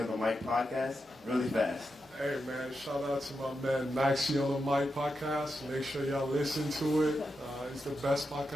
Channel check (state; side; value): normal; both; correlation 0.87